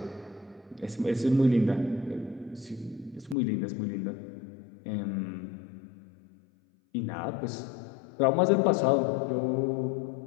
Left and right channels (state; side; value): drops out; right; at 3.4 s